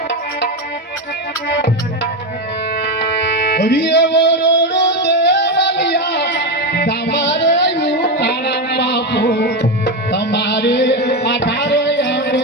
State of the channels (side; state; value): both; normal; correlation 0.12